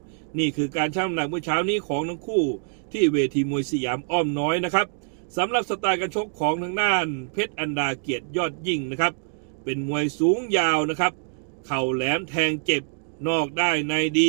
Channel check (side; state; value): left; silent; digital silence